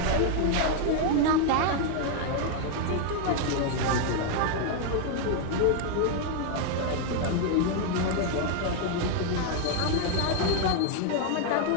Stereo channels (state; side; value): different; both; correlation 0.00